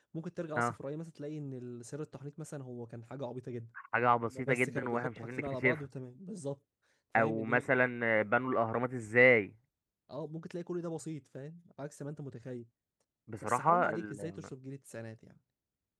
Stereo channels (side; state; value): both; identical; correlation 1.00